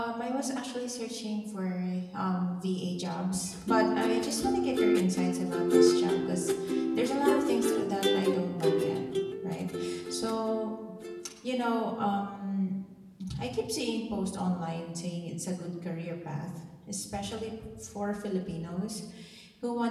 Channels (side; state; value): both; identical; correlation 1.00